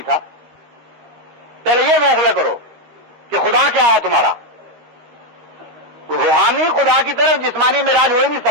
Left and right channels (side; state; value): left; late; 13 ms